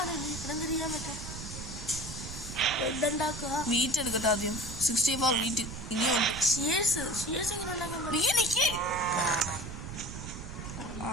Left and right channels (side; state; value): right; noise; rumble, 9 dB below the sound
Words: വീറ്റ് എടുക്കട്ടെ ആദ്യം. 64 വീറ്റ് ഇനിയുണ്ട്.